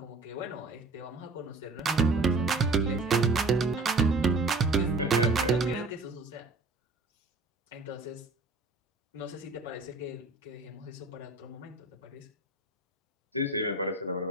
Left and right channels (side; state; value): left; quieter; 3.2 dB